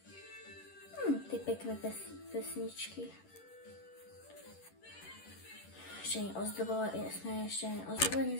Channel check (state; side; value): late; right; 11 ms